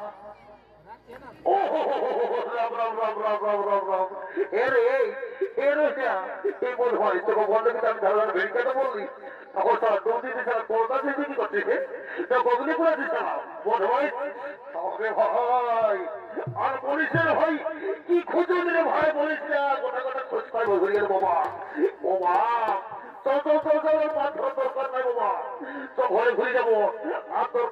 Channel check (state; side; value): identical; both; correlation 1.00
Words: ও রাম রাম রাম রাম রাম রাম রাম, এর এর এই বল হয় তোকে বললে কিন্তু আমি ধারণা ভেড়িকাটা বললি তখন তারা দৌড় দিতে ছাড়া কলকাতা থেকে কি করছে গগনি করে দিচ্ছে না বল ভাই তবে ভাই আর বলিস ভাই কি খুঁজে দিলে ভাই বলিস না, গোটা গোটা খোঁজ পাই বলি বাবা। ও মা চল চল চল চল, মাছ দরকার নাই বাবা, তো ঘরে ঘুরে যাবো, আর